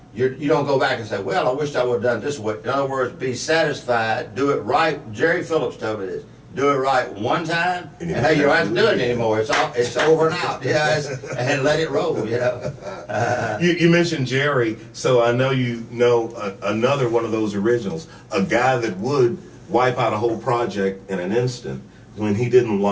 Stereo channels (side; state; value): both; identical; correlation 1.00